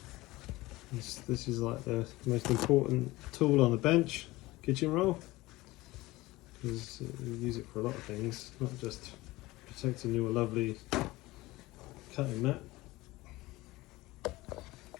This is like the most important tool on the bench, kitchen roll, because we use it for a lot of things, not just protecting your lovely cutting mat.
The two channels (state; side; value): quieter; right; 19.6 dB